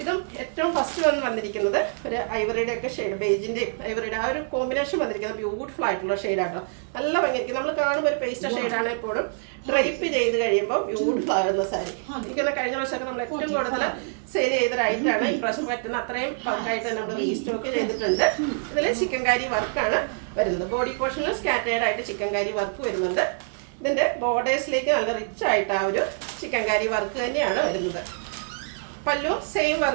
ഇതും ഏറ്റവും ഫസ്റ്റ് വന്നിരിക്കുന്നത് ഒരു ഐവറിയുടെ ഒക്കെ ഷെയ്ഡ്, ബേജിൻ്റെയും ഐവറിയുടെ ആ ഒരു കോമ്പിനേഷൻ വന്നിരിക്കുന്നത് ബ്യൂട്ടിഫുൾ ആയിട്ടുള്ള ഷെയ്ഡാട്ടോ. നല്ല ഭംഗിയായിരിക്കും. നമ്മൾ കാണുമ്പോൾ ഒരു പേസ്റ്റർ ഷെയ്ഡാണ്. എപ്പോഴും ഡ്രൈപ്പ് ചെയ്ത് കഴിയുമ്പോൾ ബ്യൂട്ടിഫുൾ ആകുന്ന സാരി. എനിക്കൊന്ന് കഴിഞ്ഞ വർഷമൊക്കെ നമ്മൾ ഏറ്റവും കൂടുതൽ സെയിൽ ചെയ്തൊരായിട്ടാണ്. ഈ പ്രാവശ്യം പറ്റുന്ന അത്രയും ബൾക്കായിട്ട് നമ്മൾ റീസ്റ്റോക്ക് ചെയ്തിട്ടുണ്ട്. ഇതിൽ ചിക്കൻകാരി വർക്കാണ് വരുന്നത്. ബോഡി പോർഷനിൽ സ്കാറ്റേഡ് ആയിട്ട് ചിക്കൻകാരി വർക്ക് വരുന്നുണ്ട്. ഇതിൻ്റെ ബോർഡേഴ്സിലേക്ക് നല്ല റിച്ച് ആയിട്ട് ആ ഒരു ചിക്കൻകാരി വർക്ക് തന്നെയാണ് വരുന്നത്. പല്ലു സെയിം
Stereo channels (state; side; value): silent; left; digital silence